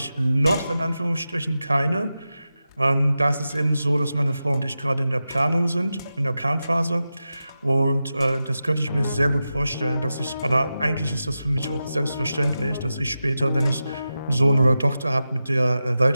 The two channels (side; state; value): both; inverted; correlation -0.92